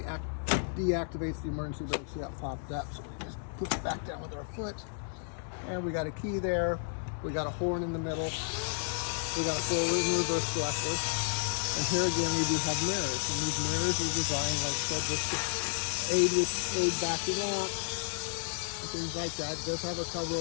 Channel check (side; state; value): right; silent; digital silence